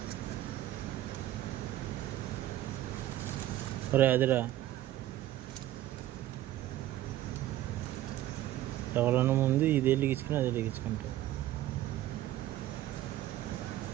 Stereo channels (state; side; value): quieter; left; 14.1 dB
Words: ఒరే అదిరా, ఎవరన్నా ముందు ఇది వెలిగించుకుని అది వెలిగించుకుంటారు.